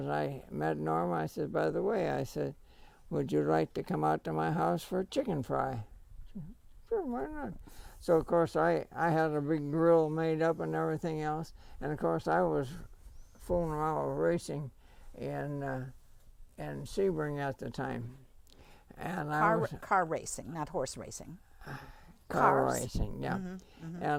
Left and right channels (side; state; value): both; identical; correlation 1.00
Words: I met Norma. I said, by the way, I said, would you like to come out to my house for a chicken fry? Sure, why not? So of course I had a big grill made up and everything else, and of course I was fooling around with racing in Sebring at the time, and car racing, not horse racing. Car Cars. racing, yeah.